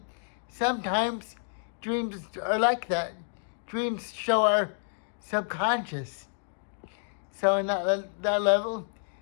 sometimes dreams are like that. Dreams show our subconscious. So in that level,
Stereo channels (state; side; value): silent; right; digital silence